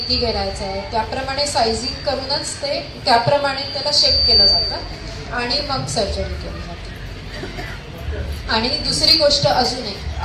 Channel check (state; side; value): identical; both; correlation 1.00